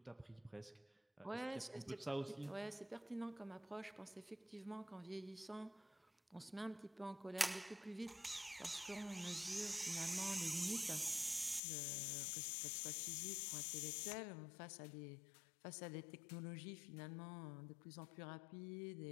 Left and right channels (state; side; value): drops out; right; at 11.6 s